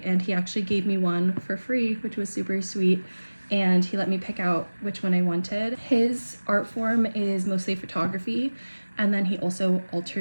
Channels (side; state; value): both; inverted; correlation -1.00